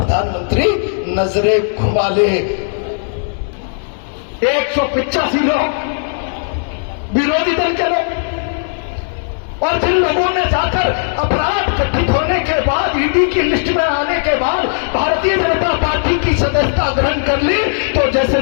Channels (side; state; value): right; silent; digital silence